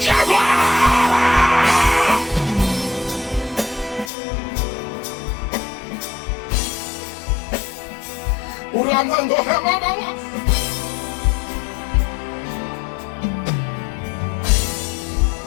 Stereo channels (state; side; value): drops out; right; at 4.1 s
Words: agora. O Ramando Remama.